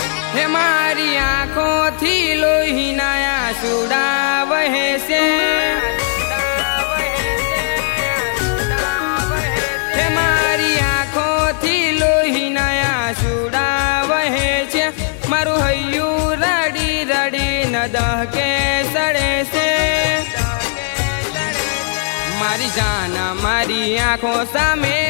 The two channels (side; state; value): right; silent; 57 dB below the other